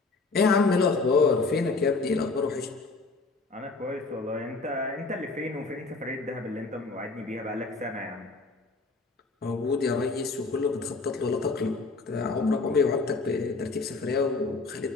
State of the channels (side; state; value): right; quieter; 3.8 dB